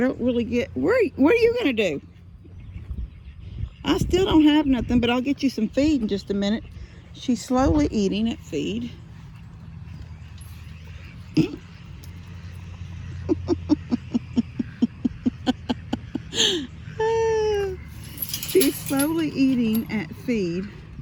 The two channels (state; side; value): identical; both; correlation 1.00